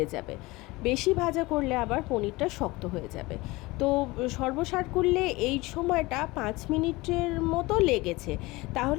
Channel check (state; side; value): quieter; right; 21.7 dB